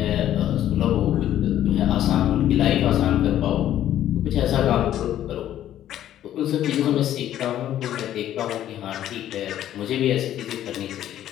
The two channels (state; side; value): quieter; right; 11.9 dB